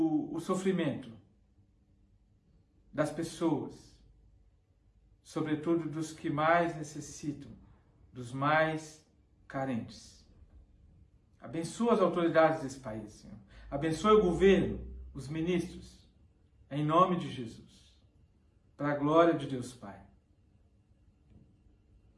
sofrimento das pessoas, sobretudo dos que mais necessitam, dos mais carentes. Abençoa as autoridades desse país, Senhor. Abençoe o governo, os ministros, em nome de Jesus, para a glória de Deus Pai.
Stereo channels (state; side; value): identical; both; correlation 1.00